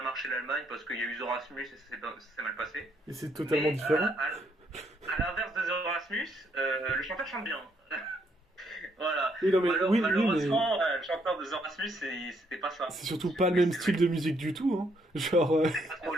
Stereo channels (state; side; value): normal; both; correlation 0.72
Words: marché l'Allemagne parce qu'il y a eu The Rasmus et ça s'est mal passé. Et c'est totalement différent. À l'inverse de The Rasmus, le chanteur chante bien. Voilà. Oui, non, mais, Malheureusement, le chanteur de The Rasmus, c'était pas ça. C'est surtout pas le même style de musique du tout, hein. Genre. C'est